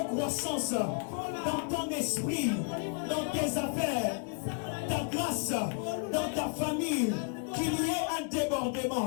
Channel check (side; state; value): right; quieter; 35.5 dB